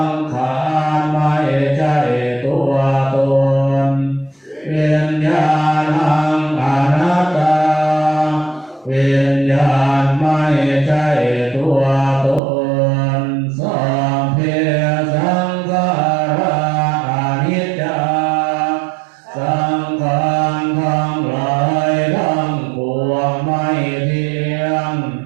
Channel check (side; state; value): left; drops out; at 12.4 s